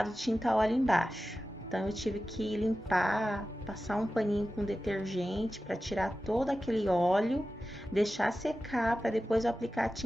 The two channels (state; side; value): normal; both; correlation 0.94